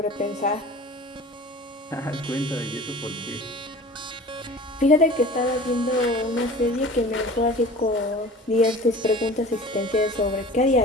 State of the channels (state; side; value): normal; both; correlation 0.41